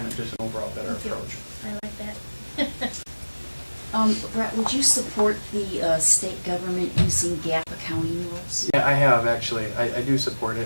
just an overall better approach. I like that. Brett, would you support the state government using GAAP accounting rules? Yeah, I have actually. I do support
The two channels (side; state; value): both; inverted; correlation -1.00